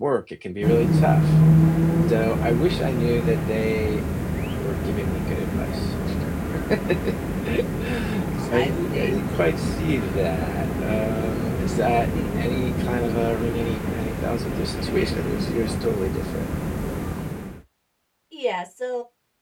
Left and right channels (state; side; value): identical; both; correlation 1.00